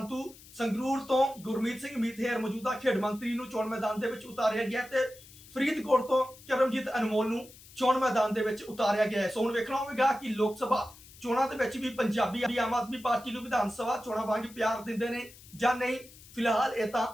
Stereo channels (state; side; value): noise; left; hiss, 21 dB below the sound